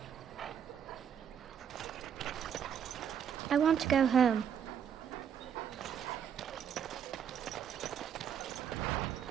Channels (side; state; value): left; quieter; 8.4 dB